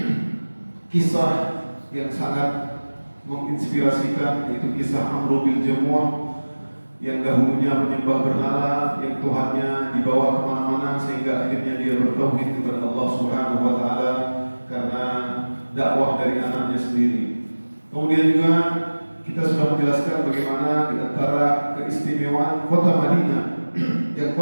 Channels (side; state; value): both; inverted; correlation -1.00